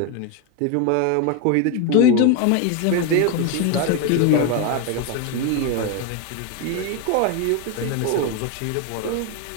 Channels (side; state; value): both; different; correlation 0.02